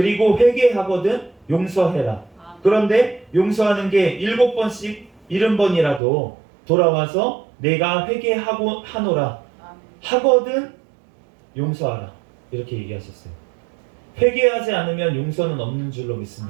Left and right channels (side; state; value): left; drops out; at 6.0 s